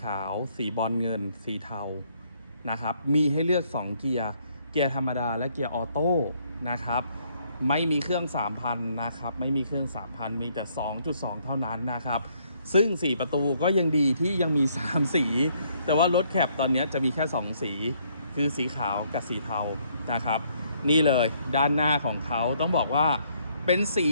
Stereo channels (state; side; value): inverted; both; correlation -0.69